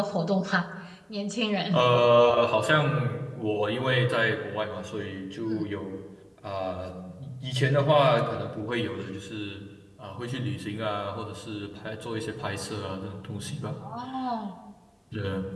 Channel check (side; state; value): both; identical; correlation 1.00